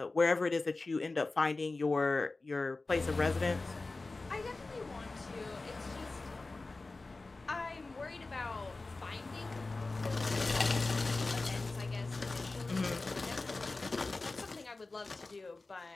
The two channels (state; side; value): quieter; right; 3.4 dB